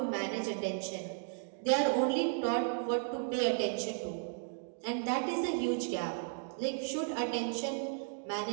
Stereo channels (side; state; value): left; silent; digital silence